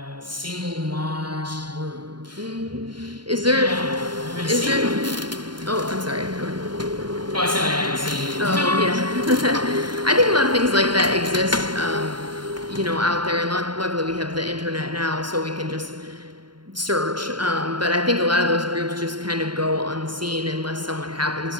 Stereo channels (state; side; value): late; left; 0.72 ms